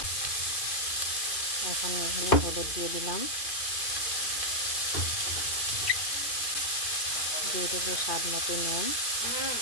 এখন এখানে হলুদ দিয়ে দিলাম, দিয়ে দেবো স্বাদ মতো নুন।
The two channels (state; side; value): late; right; 2.5 ms